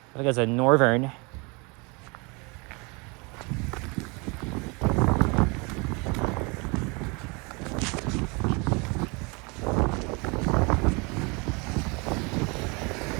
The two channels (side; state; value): left; quieter; 29.4 dB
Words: I think it's a Northern.